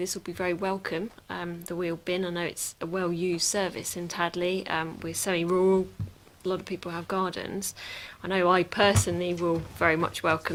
will be very welcome. The wheel bin, I know it's a well-used service in Tadley. We're semi-rural, a lot of people have gardens. I know I personally will very much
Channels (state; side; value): identical; both; correlation 1.00